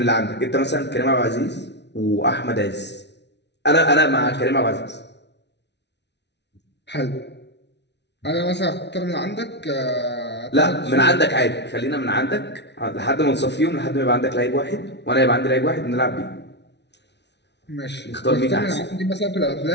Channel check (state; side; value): late; right; 0.50 ms